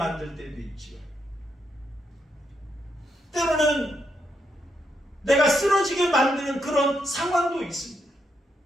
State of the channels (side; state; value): both; normal; correlation 0.80